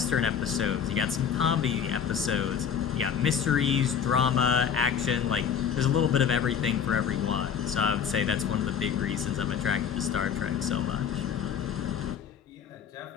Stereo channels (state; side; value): quieter; right; 7.6 dB